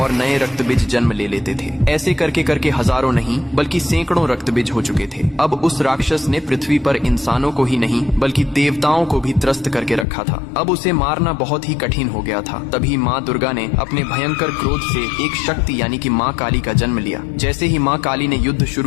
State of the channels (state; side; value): drops out; right; at 10.1 s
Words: नए रक्तबीज जन्म ले लेते थे। ऐसे करके करके हजारों नहीं बल्कि सैकड़ों रक्तबीज हो चुके थे। अब उस राक्षस ने पृथ्वी पर इंसानों को ही नहीं बल्कि देवताओं को भी त्रस्त करके रखा था। अब उसे मारना बहुत ही कठिन हो गया था। तभी माँ दुर्गा ने अपने भयंकर क्रोध से एक शक्ति यानी कि माँ काली का जन्म लिया। जैसे ही माँ काली ने युद्ध